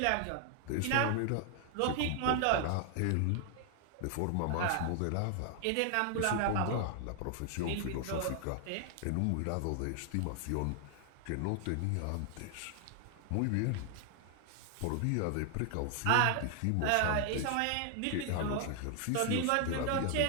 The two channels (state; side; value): different; both; correlation 0.00